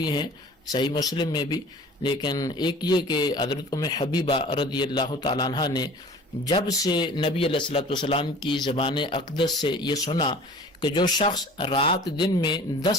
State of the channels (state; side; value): normal; both; correlation 0.45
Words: ہیں صحیح مسلم میں بھی، لیکن ایک یہ کہ حضرت ام حبیبہ رضی اللہ تعالیٰ عنہ نے جب سے نبی علیہ الصلوۃ والسلام کی زبان اقدس سے یہ سنا کہ جو شخص رات دن میں